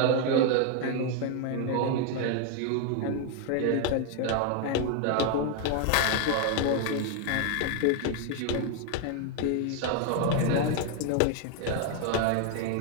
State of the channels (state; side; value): different; both; correlation 0.01